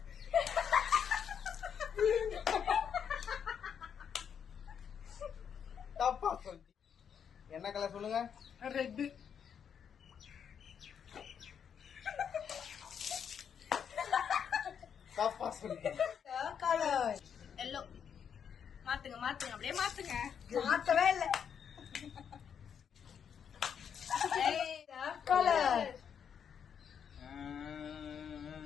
தப்பா சொல்லி என்ன கலர் சொல்லுங்க? ரெட். தப்பா சொல்லி கலர் எல்லோ. மாத்துங்க மாத்துங்க அப்படியே மாத்துங்க. மாத்தவே இல்ல. கலர்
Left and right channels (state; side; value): quieter; right; 7.7 dB